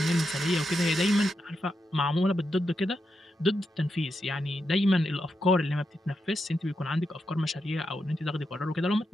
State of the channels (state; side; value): normal; both; correlation 0.85